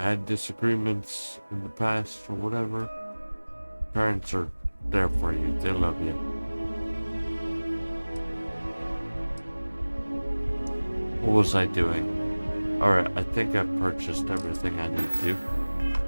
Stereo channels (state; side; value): inverted; both; correlation -1.00